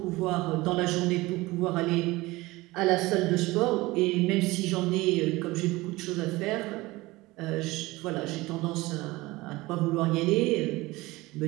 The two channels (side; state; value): left; quieter; 20.5 dB